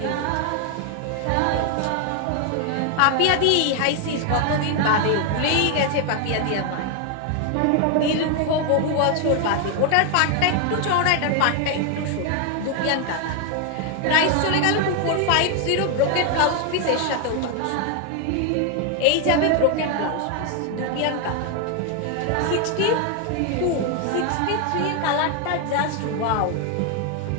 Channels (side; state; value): both; different; correlation 0.01